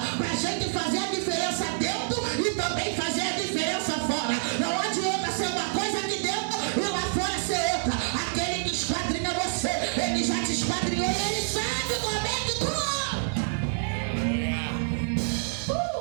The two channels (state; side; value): silent; left; 60 dB below the other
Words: para a gente fazer a diferença dentro e também fazer a diferença fora. Não adianta ser uma coisa aqui dentro e lá fora ser outra. Aquele que esquadrinha você, ele já te esquadrinhou e ele sabe como é que tu